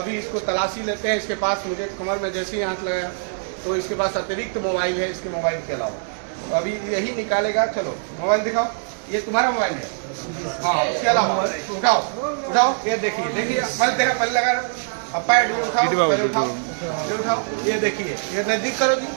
इसको तलाशी लेते हैं। इसके पास मुझे कमर में जैसे ही हाथ लगाया तो इसके पास अतिरिक्त मोबाइल है इसके मोबाइल के अलावा, तो अभी यही निकालेगा। चलो मोबाइल दिखाओ, ये तुम्हारा मोबाइल है? हाँ, इसके अलावा उठाओ उठाओ, ये देखिए देखिए, मैं तेरा पहले लगा रहा हूँ। अब पैड भी उठाओ, ये उठाओ, ये देखिए, ये नजदीक करो जी,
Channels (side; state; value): left; silent; digital silence